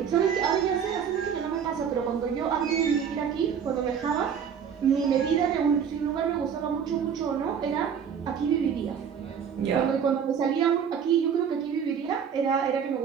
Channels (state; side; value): quieter; left; 7.5 dB